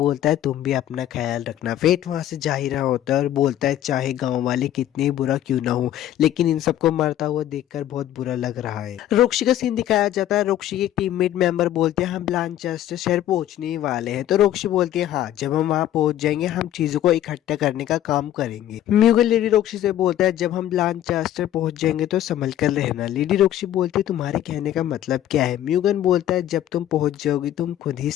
है तुम भी अपना ख्याल रखना। फेट वहां से जा ही रहा होता है और बोलता है चाहे गांव वाले कितने बुरा क्यों ना हो, लेकिन इन सबको मरता हुआ देखकर बहुत बुरा लग रहा है। रोक्शी का सीन दिखाया जाता है। रोक्शी के टीममेट मेंबर बोलते हैं हम ब्लानचेस्टर शहर पहुंचने ही वाले हैं। तो रोक्शी बोलती है हाँ जब हम वहां पहुंच जाएंगे हम चीजों को इकट्ठा करने का काम करेंगे। म्यूगल लेडी रोक्शी से बोलता है जब हम ब्लानचेस्टर पहुंच जाएंगे तो संभल कर रहना। लेडी रोक्शी बोलती है तुम्हारे कहने का मतलब क्या है। म्यूगन बोलता है जब तुम पहुंच जाओगी तुम खुद ही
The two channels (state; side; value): quieter; right; 12.2 dB